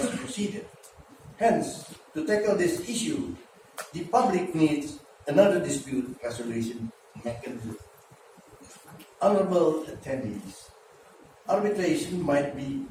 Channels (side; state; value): both; identical; correlation 1.00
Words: procedure. Hence, to tackle this issue, the public needs another dispute resolution mechanism. Honorable attendees, arbitration might be